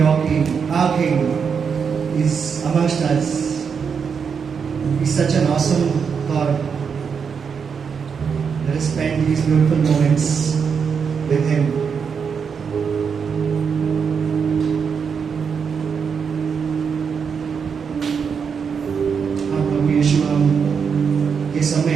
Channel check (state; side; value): quieter; left; 6.4 dB